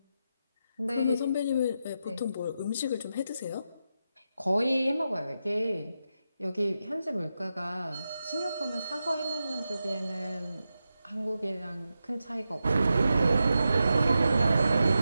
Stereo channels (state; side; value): inverted; both; correlation -0.88